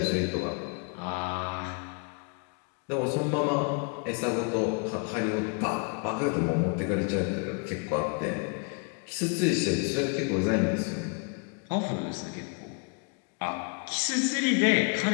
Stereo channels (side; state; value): right; quieter; 36.2 dB